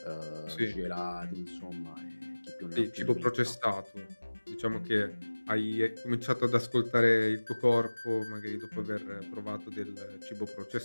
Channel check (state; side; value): inverted; both; correlation -1.00